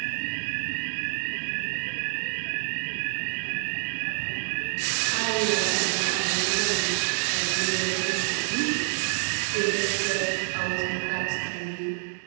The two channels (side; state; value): left; silent; 60 dB below the other